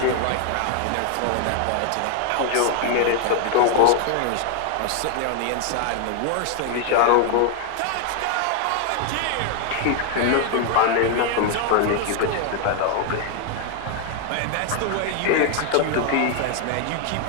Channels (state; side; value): different; both; correlation 0.01